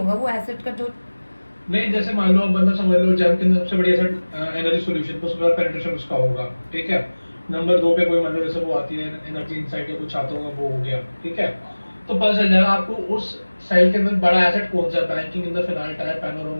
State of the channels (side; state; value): both; inverted; correlation -1.00